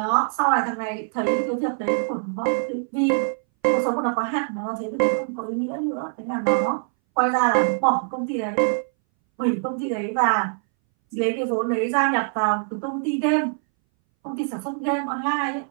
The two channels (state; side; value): silent; left; 61 dB below the other